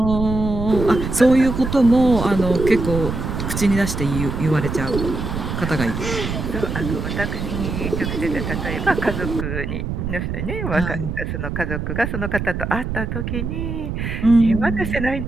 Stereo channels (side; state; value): right; noise; rumble, 4 dB below the sound